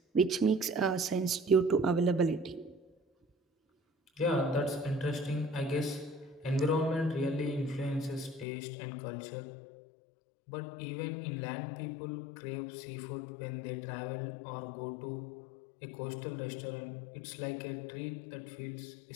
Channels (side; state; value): right; drops out; at 8.5 s